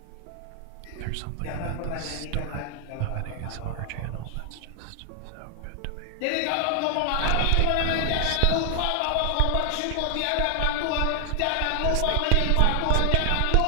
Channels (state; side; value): different; both; correlation 0.00